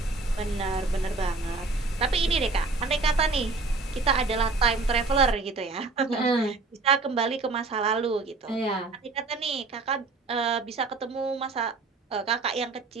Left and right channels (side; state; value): left; quieter; 3.8 dB